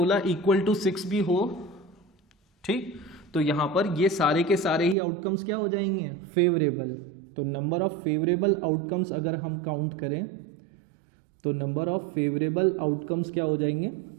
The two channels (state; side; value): drops out; left; at 5.0 s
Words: इक्वल टू 6 भी हो, ठीक, तो यहां पर ये सारे के सारे ही आउटकम्स क्या हो जाएंगे, फेवरेबल। तो नंबर ऑफ फेवरेबल आउटकम्स अगर हम काउंट करें तो नंबर ऑफ फेवरेबल आउटकम्स क्या हो जाएंगे,